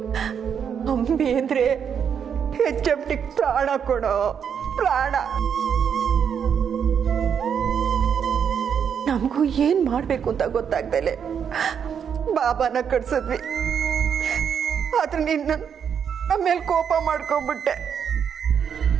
ಅಂಬಿ ಅಂದ್ರೆ HMT ಪ್ರಾಣ ಕೊಡೋ ಪ್ರಾಣ. ನಮಗೂ ಏನ್ ಮಾಡ್ಬೇಕು ಅಂತ ಗೊತ್ತಾಗ್ದಲೆ ಬಾಬಾನ ಕಟ್ಸಿದ್ವಿ. ಆದ್ರೆ ನಿನ್ನ ನಮ್ಮ ಮೇಲೆ ಕೋಪ ಮಾಡ್ಕೊಂಡ್ಬಿಟ್ಟೆ.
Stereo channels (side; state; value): left; quieter; 7.6 dB